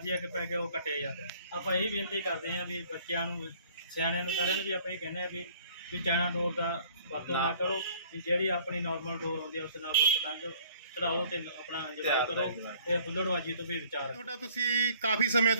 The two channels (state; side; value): inverted; both; correlation -0.56